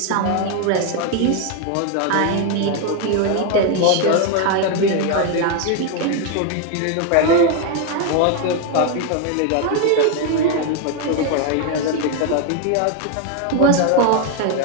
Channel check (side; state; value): both; different; correlation 0.01